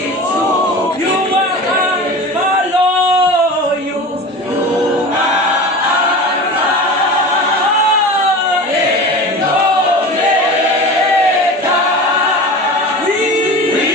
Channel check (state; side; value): normal; both; correlation 0.33